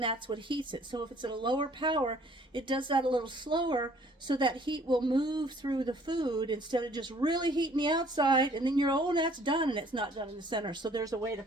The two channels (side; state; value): both; normal; correlation 0.57